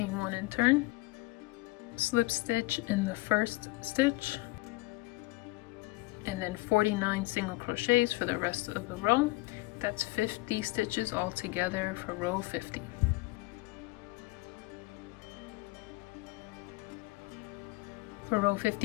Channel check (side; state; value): right; quieter; 21.6 dB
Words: 1 and turn, slip stitch in the first stitch, and then then 49 single crochets for the rest of the row. That's 50 stitches altogether for row 50. For row